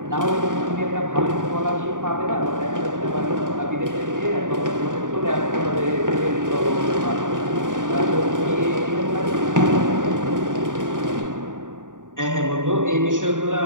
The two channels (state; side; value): late; left; 0.88 ms